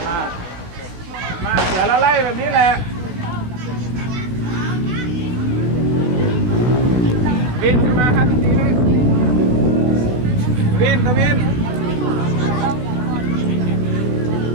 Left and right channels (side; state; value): left; late; 16 ms